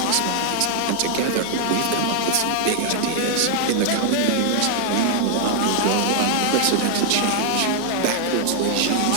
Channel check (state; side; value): different; both; correlation 0.00